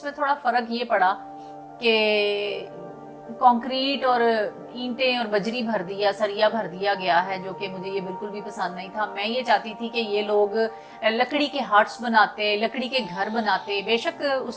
میں تھوڑا فرق یہ پڑا کہ کنکریٹ اور اینٹیں اور بجری بھر دیا، سریا بھر دیا گیا ہے، جو کہ مجھے یہ بالکل بھی پسند نہیں تھا۔ میں یہ چاہتی تھی کہ یہ لوگ لکڑی کے ہٹس بناتے، لکڑی کے گھر بناتے، بے شک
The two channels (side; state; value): both; identical; correlation 1.00